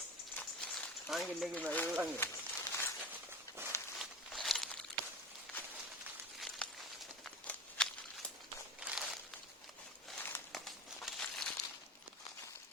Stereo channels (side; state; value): both; normal; correlation 0.32